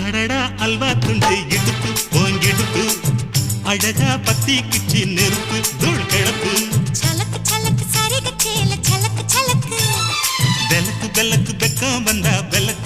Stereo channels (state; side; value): identical; both; correlation 1.00